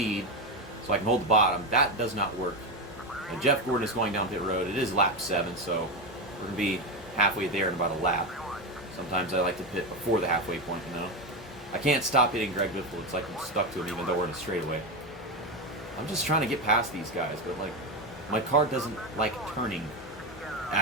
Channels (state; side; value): normal; both; correlation 0.13